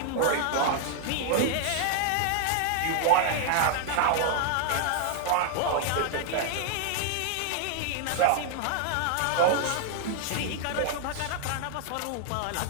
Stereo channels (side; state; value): both; different; correlation 0.00